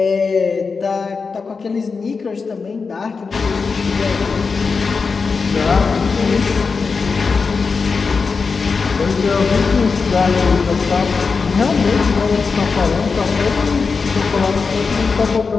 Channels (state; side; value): quieter; right; 4.9 dB